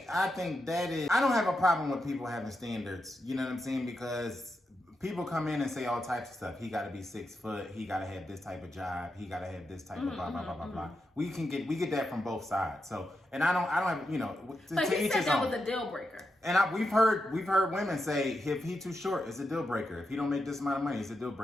I think that is, I don't have a problem with people having standards, you know what I'm saying? Because people come in and say all types of stuff. He got to be 6 foot. He got to have this type of job. He got to have this type of blah, blah, blah, blah, blah. We get that from both sides. So, and I don't have, you know, but he said that was a deal breaker. And we've heard women say, if he too short, it's a deal breaker. If he don't make this amount of money, it's a deal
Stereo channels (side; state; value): both; normal; correlation 0.86